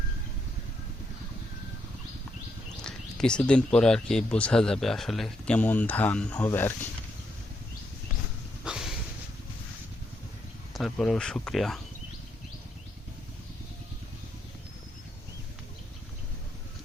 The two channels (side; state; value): both; normal; correlation 0.79